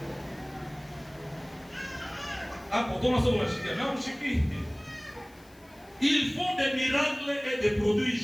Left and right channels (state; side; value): noise; left; hiss, 28 dB below the sound